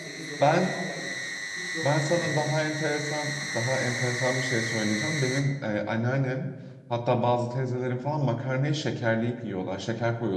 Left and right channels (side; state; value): both; identical; correlation 1.00